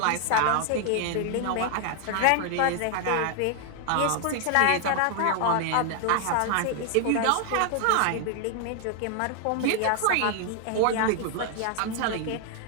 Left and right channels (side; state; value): both; different; correlation 0.00